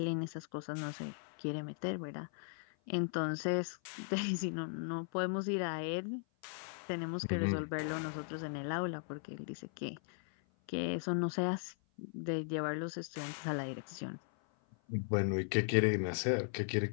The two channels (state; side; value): silent; right; 53 dB below the other